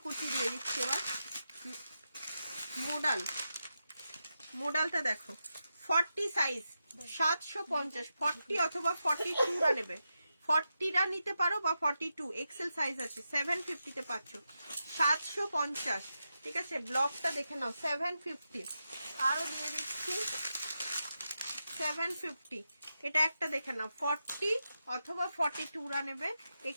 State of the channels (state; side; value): inverted; both; correlation -0.88